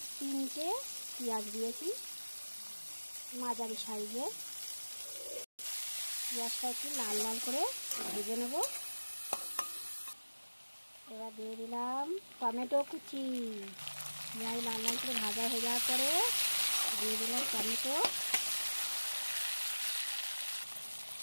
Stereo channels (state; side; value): inverted; both; correlation -1.00